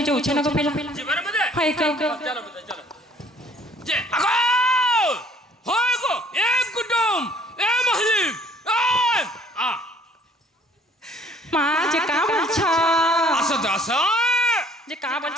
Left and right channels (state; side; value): normal; both; correlation 0.57